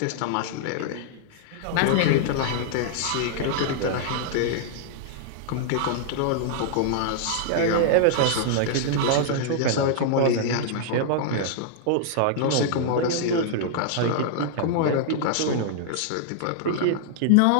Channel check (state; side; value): different; both; correlation -0.01